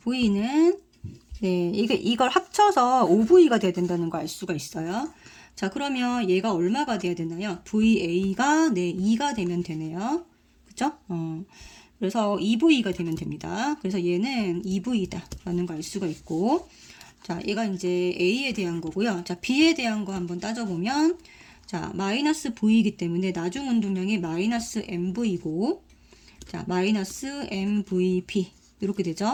네, 이걸 합쳐서 5V가 돼야 된다는 거 알 수가 있어요. 자, 그러면 얘가 얼마가 돼야 되나요? VA가 네, 2가 되면 되네요. 그죠? 그래서 2V가 되면 됩니다. 그래서 얘는 2V다 라는 거 알 수가 있고 자, 얘가 이제 A에 대한 거고요. 자, B에 대한 거 한번 따져보면 자, 마이너스 V이기 때문에 나중 운동량이 마이너스 MV고 자, 마이너스 MVP 이렇게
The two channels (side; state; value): both; identical; correlation 1.00